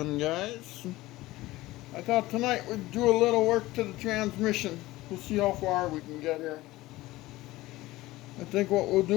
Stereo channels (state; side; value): quieter; right; 18.2 dB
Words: guys. I thought tonight we'd do a little work to the transmission. We'll see how far we can get here. I think what we'll